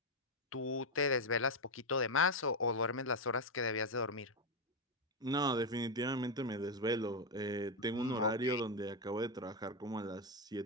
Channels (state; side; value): normal; both; correlation 0.05